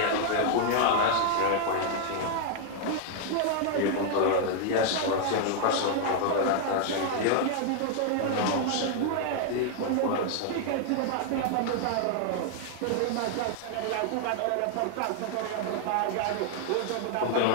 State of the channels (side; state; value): both; different; correlation 0.00